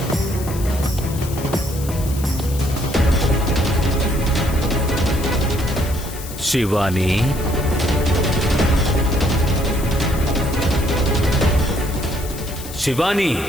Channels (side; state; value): left; noise; hiss, 13 dB below the sound